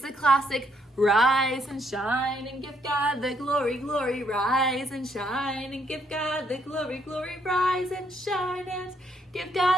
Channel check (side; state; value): both; normal; correlation 0.72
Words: the classic rise and shine and give God the glory, glory, rise and shine and give God the glory, glory, rise and shine and give